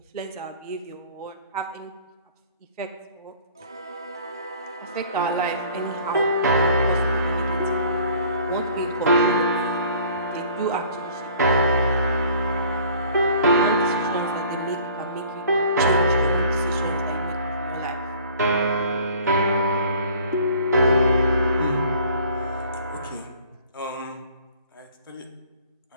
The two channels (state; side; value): inverted; both; correlation -0.51